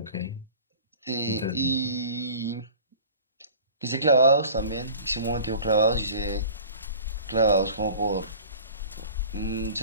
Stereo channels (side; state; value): both; inverted; correlation -0.44